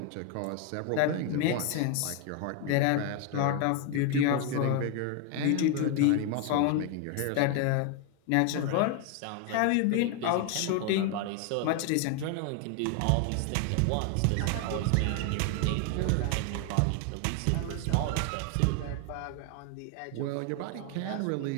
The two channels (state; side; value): different; both; correlation 0.01